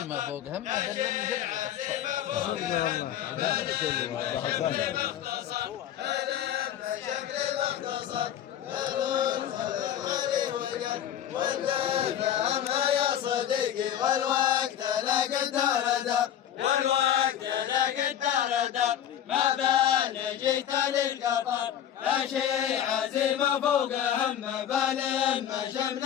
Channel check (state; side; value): quieter; right; 10.4 dB